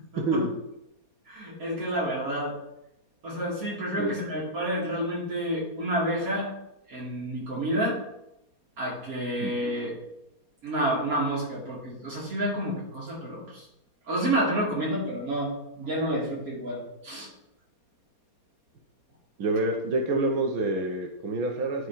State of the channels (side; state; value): left; late; 4.3 ms